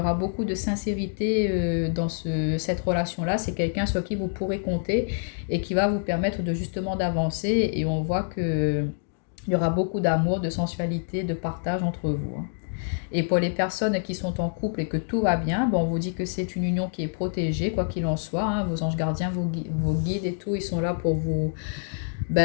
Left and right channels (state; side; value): silent; right; digital silence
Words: beaucoup de sincérité dans cette relation-là. C'est quelqu'un sur qui vous pourrez compter et qui va vous permettre de justement d'avancer et on voit que il y aura beaucoup d'amour, de sensualité, de partage entre vous, hein. Et pour les personnes qui sont en couple et que tout va bien, on vous dit que c'est une union qui est protégée, quoi qu'il en soit, hein. Vos anges gardiens, vos guides et tout, ils sont là pour vous